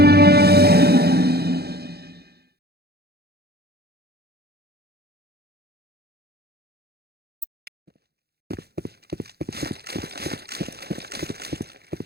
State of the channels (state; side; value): late; left; 0.46 ms